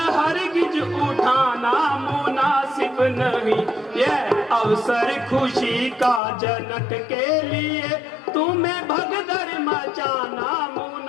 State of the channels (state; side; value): drops out; right; at 6.2 s